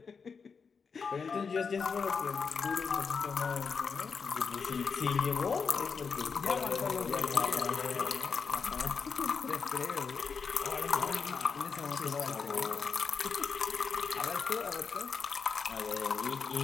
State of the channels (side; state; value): right; quieter; 5.5 dB